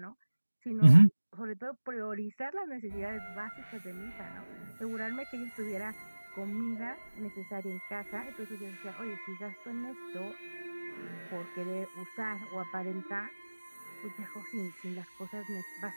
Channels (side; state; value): both; inverted; correlation -1.00